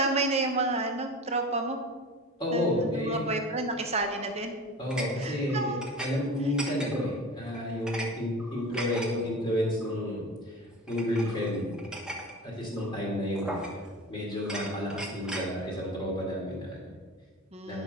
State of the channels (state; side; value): normal; both; correlation 0.33